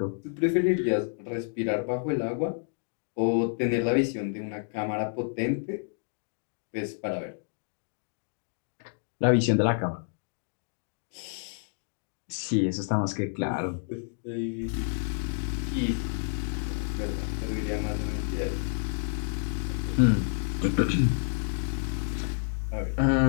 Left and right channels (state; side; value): silent; right; digital silence